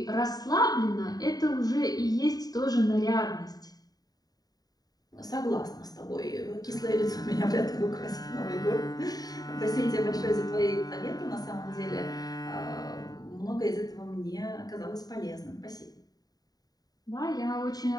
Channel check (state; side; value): late; right; 0.18 ms